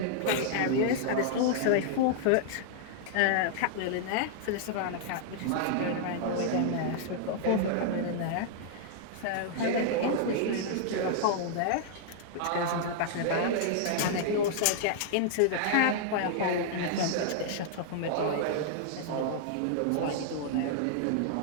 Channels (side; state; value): both; different; correlation -0.01